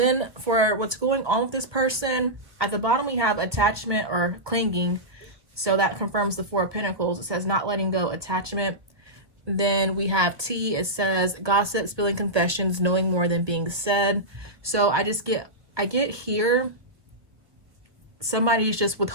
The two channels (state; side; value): late; left; 1.3 ms